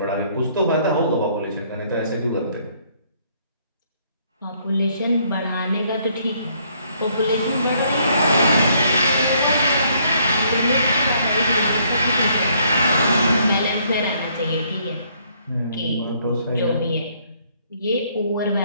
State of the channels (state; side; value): inverted; both; correlation -0.67